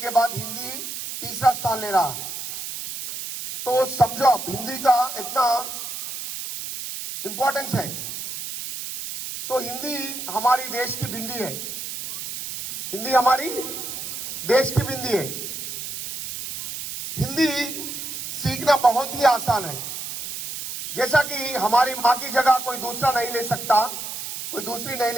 बाद हिंदी तीसरा स्थान ले रहा। तो समझो आप हिंदी का इतना इंपॉर्टेंस है। तो हिंदी हमारी देश की बिंदी है। हिंदी हमारी देश की बिंदी है। हिंदी सीखना बहुत ही आसान है। जैसा कि हमारी मां की जगह कोई दूसरा नहीं ले सकता, कोई दूसरी नहीं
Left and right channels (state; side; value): noise; right; hiss, 7 dB below the sound